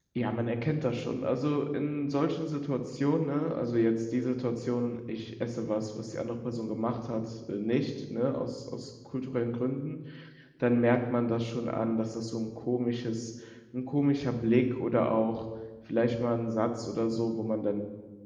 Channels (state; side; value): identical; both; correlation 1.00